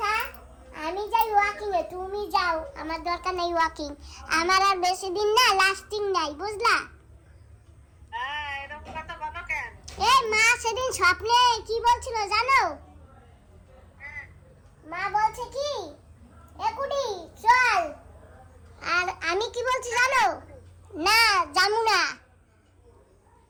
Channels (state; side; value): identical; both; correlation 1.00